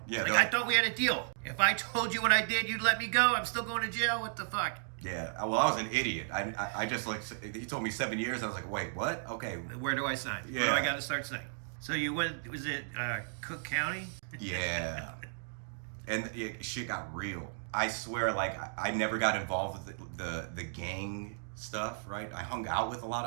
Yeah, like, I thought we had a deal. If I told you what I did, you'd let me go. I'm still going to jail. What the fuck? Yeah, well, I was an idiot. I just, like, he told me 7 years. I was like, wait, what? Okay. Where do I sign? Yeah. Where do I got to start signing? So you went, was it Cook County? Yeah. And shit got real. I swear, like, I never got involved with the gang stuff, right? I hung out with a lot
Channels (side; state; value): left; silent; digital silence